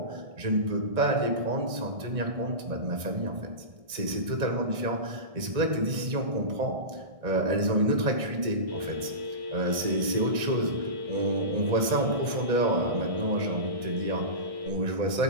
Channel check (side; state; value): left; late; 1.6 ms